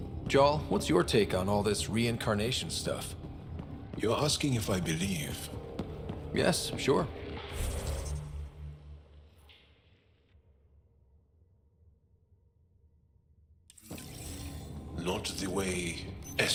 Jarl, what's your take on all this reincarnation stuff? You're asking if I believe? Yes, sure. Not the way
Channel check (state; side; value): identical; both; correlation 1.00